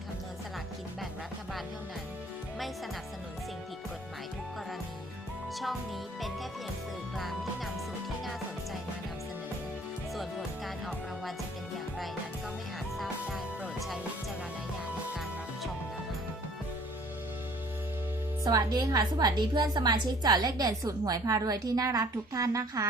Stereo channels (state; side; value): normal; both; correlation 0.54